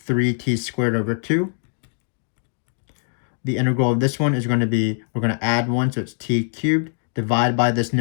squared over 2. The integral of this one is going to be, we're going to add 1, so it's t cubed, divide by this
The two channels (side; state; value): right; silent; digital silence